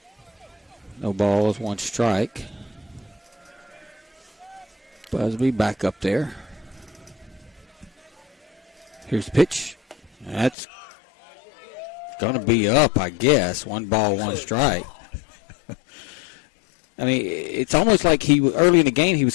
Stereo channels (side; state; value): right; drops out; at 10.6 s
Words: No balls, 1 strike. Busby back up there. Here's the pitch. That's Going to be up, I guess. 1 ball, 1 strike. I mean, it's almost like early in the game he was